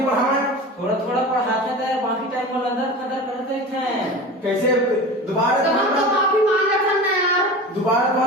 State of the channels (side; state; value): both; normal; correlation 0.32